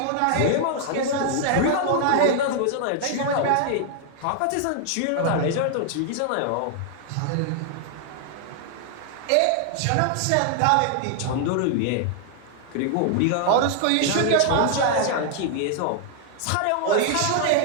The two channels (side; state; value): both; different; correlation 0.00